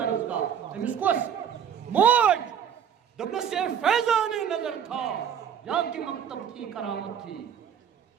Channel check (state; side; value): quieter; left; 8.3 dB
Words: أمِس کۄس موج دوٚپنَس یہ فیضان نظر تھا یا کہ مکتب تھی کرامت تھی